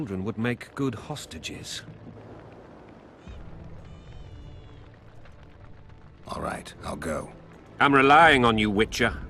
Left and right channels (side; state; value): both; identical; correlation 1.00